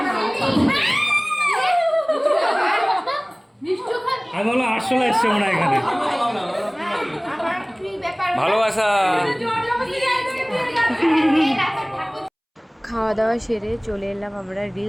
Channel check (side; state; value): both; identical; correlation 1.00